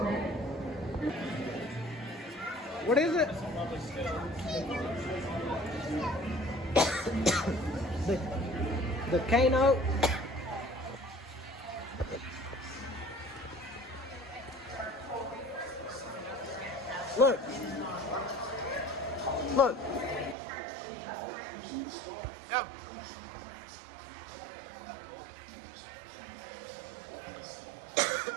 What is it? The Kano. Look. Look. Go.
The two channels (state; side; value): drops out; left; at 20.4 s